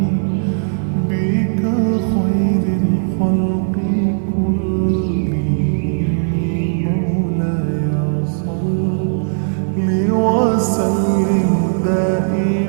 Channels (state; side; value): silent; left; digital silence